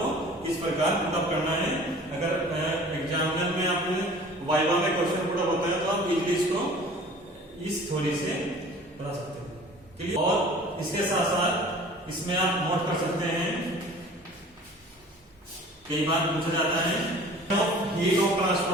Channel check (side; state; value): both; normal; correlation 0.46